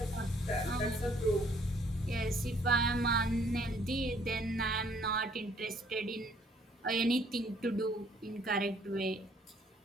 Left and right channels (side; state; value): both; normal; correlation 0.62